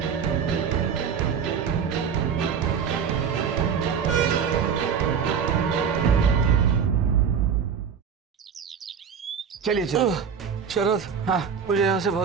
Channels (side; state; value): left; quieter; 7.0 dB